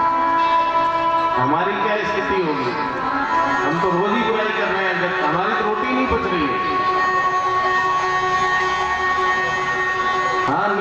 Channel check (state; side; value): identical; both; correlation 1.00